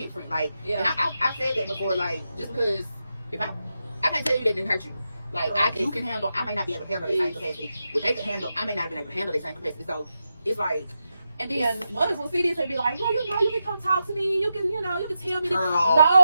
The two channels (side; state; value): both; inverted; correlation -0.88